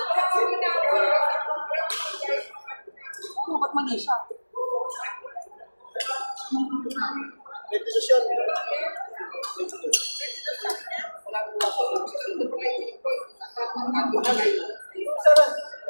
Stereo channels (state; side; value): inverted; both; correlation -1.00